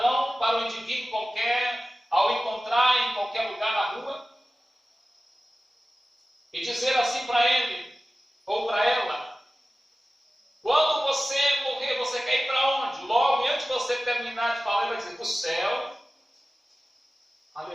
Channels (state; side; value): normal; both; correlation 0.96